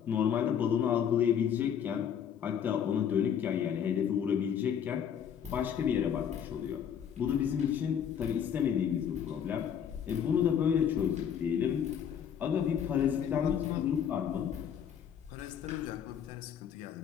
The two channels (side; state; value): right; quieter; 8.4 dB